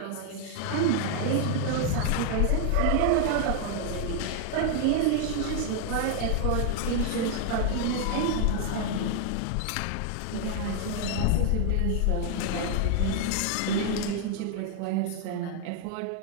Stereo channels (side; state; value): both; different; correlation 0.00